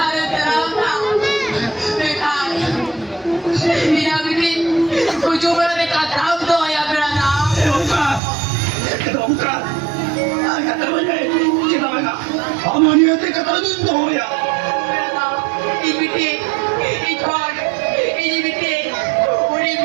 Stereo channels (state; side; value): drops out; left; at 8.2 s